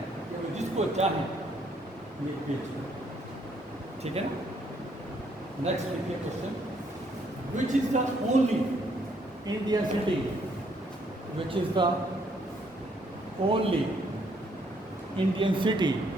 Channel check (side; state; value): both; normal; correlation 0.69